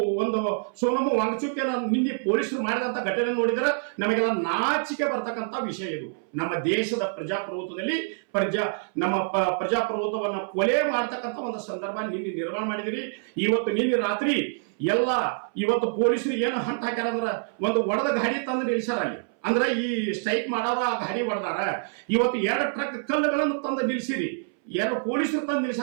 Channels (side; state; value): left; silent; 60 dB below the other